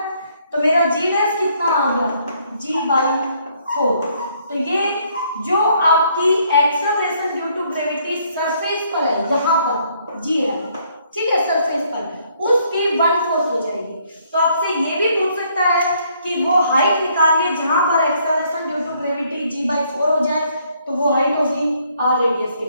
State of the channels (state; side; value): inverted; both; correlation -0.67